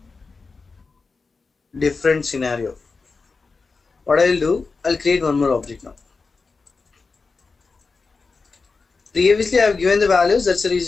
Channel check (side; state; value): right; quieter; 4.3 dB